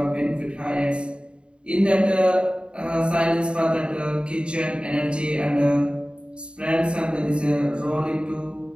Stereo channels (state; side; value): late; left; 0.053 ms